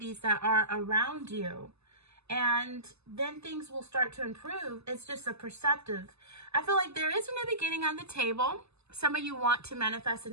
that are around you. And then things will start to improve. It's just a perceptive. I feel like there is a new beginning on the table. Some of you want to manifest a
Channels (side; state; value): left; late; 0.79 ms